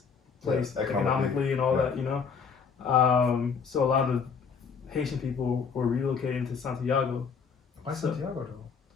place economically and all that, so a lot of Haitian people were relocating to Santiago, Why So, Santiago though?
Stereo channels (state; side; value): quieter; right; 5.9 dB